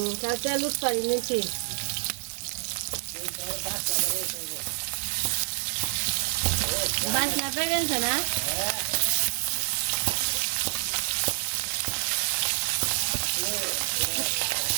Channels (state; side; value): silent; left; digital silence